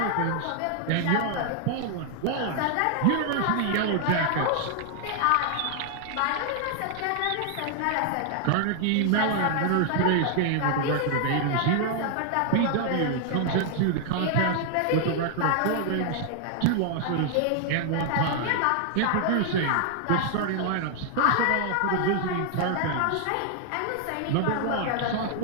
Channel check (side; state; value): both; different; correlation 0.00